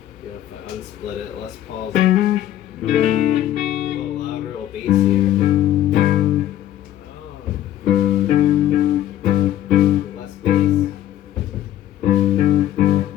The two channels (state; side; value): quieter; right; 12.6 dB